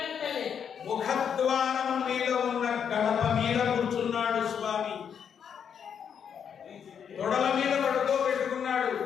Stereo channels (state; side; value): quieter; right; 7.7 dB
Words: ముఖద్వారం మీద ఉన్న గడప మీద కూర్చున్నాడు స్వామి. తొడల మీద పడుకోబెట్టుకున్నాడు.